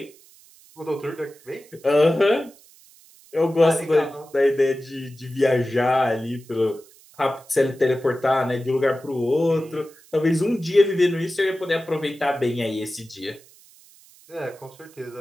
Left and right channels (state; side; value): noise; right; hiss, 26 dB below the sound